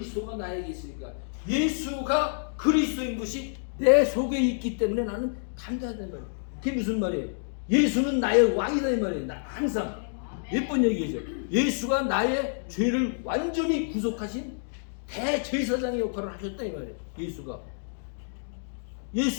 나에게 있으니까 예수가 그리스도인 것이 내 속에 있기 때문에 나는 담대하다는 말이에요. 그게 무슨 말이에요? 예수는 나의 왕이다 이 말이에요. 나 항상 몇 번 얘기하죠. 예수가 나의 죄를 완전히 구속하신 대제사장의 역할을 하셨다 이 말이에요.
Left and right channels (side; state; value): right; silent; digital silence